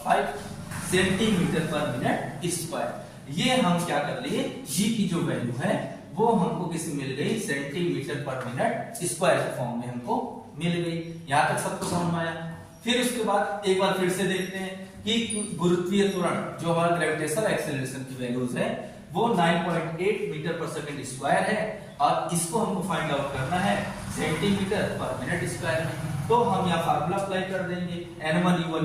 5 सेंटीमीटर पर मिनट स्क्वायर। ये हम क्या कर लिए, जी की जो वैल्यू है वो हमको किसी मिल गई सेंटीमीटर पर मिनट स्क्वायर के फॉर्म में हमको मिल गई। यहां तक सबको समझ में आया। फिर उसके बाद एक बार फिर से देखते हैं कि गुरुत्वीय त्वरण जो हमारा ग्रेविटेशनल एक्सीलरेशन की वैल्यूज है वो 9.8 मीटर पर सेकंड स्क्वायर है और इसको हमको फाइंड आउट करना है सेंटीमीटर पर मिनट स्क्वायर में। तो हम यहाँ फार्मूला अप्लाई कर देंगे, N1 U1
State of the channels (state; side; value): identical; both; correlation 1.00